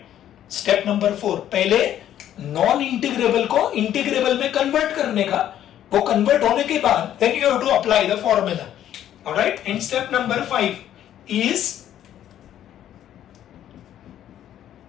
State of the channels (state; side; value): quieter; right; 11.2 dB